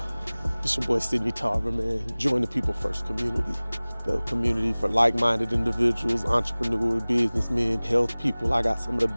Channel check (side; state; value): both; inverted; correlation -1.00